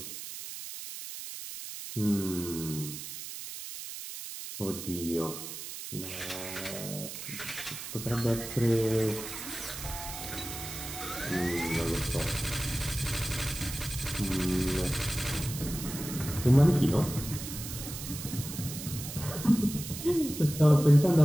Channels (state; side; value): noise; right; hiss, 9 dB below the sound